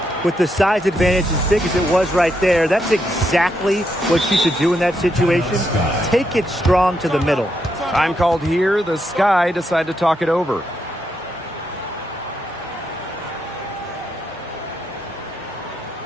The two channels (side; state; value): both; normal; correlation 0.80